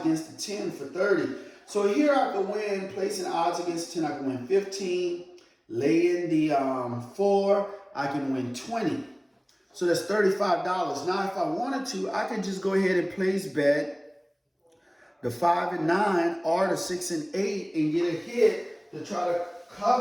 the 10 for 30. So here I can win, placing odds against 10, I can win 15. Lay in the 4, I can win 20. So that's $35. Now if I wanted to, I could just go ahead and place bet the 5 and 9 or the 6 and 8 and get a hit to try to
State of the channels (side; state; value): both; identical; correlation 1.00